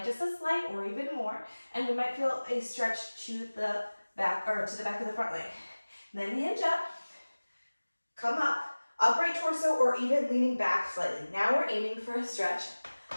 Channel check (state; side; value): inverted; both; correlation -1.00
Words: just a slight or even more? And we might feel a stretch to the back or to the back of the front leg. Then hinge up, come up, upright torso or even leaning back slightly. Now we're aiming for a stretch